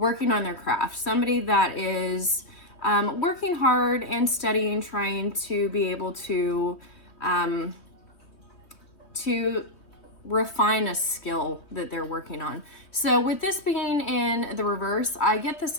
on their craft. Somebody that is working hard and studying, trying to be able to refine a skill that they're working on. So with this being in the reverse, I get the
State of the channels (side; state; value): right; late; 3.2 ms